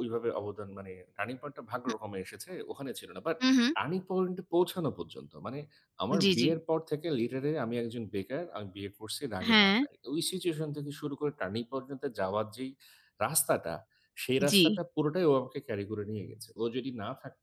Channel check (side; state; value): both; identical; correlation 1.00